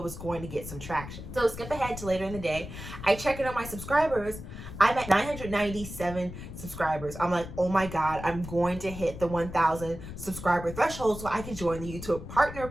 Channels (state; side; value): noise; left; rumble, 11 dB below the sound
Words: going to get some traction. So skip ahead to later in the day. I check in on my subscribers. I'm at 997 subscribers. I'm like, oh my God, I'm going to hit the 1,000 subscriber threshold so I can join the YouTube Partner